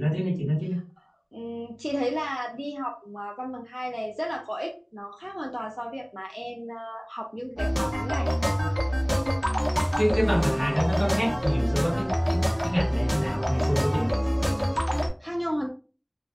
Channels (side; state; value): both; identical; correlation 1.00